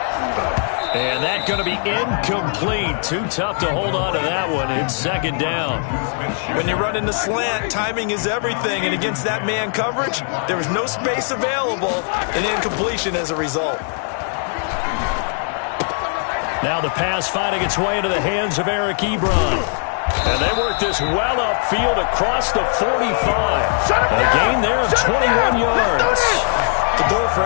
And that's going to be incomplete. Too tough to hold on to that one. It's 2nd down. When you run in the slant, timing is everything. And against that man coverage, there was no space available, and incompletion as a result. Now the pass finding its way into the hands of Eric Ebron. And they work this well upfield across the 45. A gain there of 21 yards. The goal for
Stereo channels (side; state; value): right; silent; 56 dB below the other